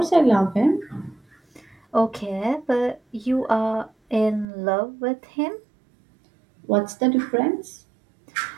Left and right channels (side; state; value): left; drops out; at 4.5 s